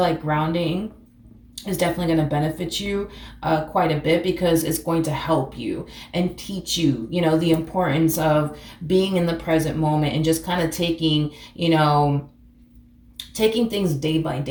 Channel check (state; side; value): identical; both; correlation 1.00